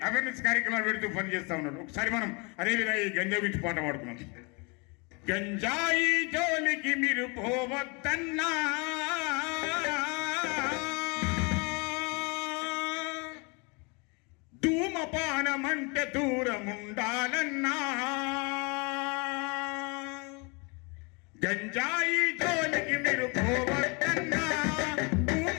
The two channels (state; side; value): quieter; right; 31.0 dB